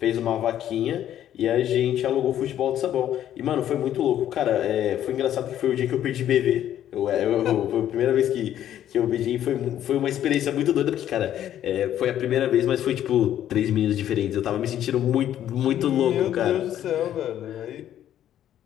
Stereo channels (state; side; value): quieter; right; 11.3 dB